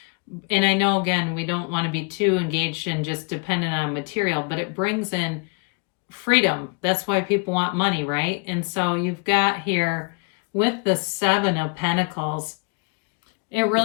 And I know, again, we don't want to be too engaged and just dependent on material, but it brings in freedom. That's why people want money, right? And so you've got here with the Seven of Pentacles, it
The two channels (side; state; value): right; quieter; 34.6 dB